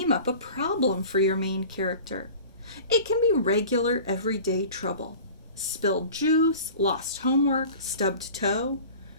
up a problem for your main character. It can be regular, everyday trouble: spilled juice, lost homework, stubbed toe,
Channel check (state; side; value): inverted; both; correlation -0.40